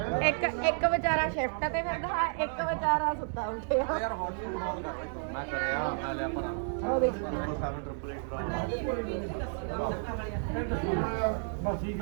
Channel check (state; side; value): silent; left; 57 dB below the other